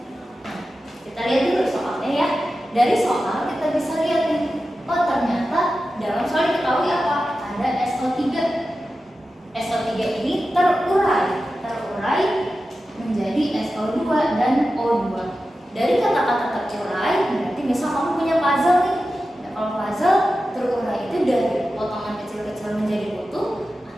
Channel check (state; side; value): normal; both; correlation 0.93